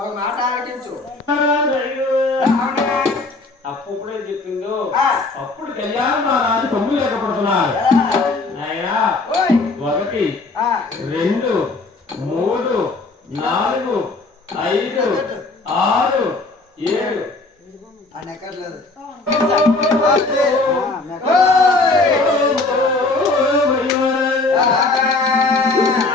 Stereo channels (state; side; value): quieter; right; 3.4 dB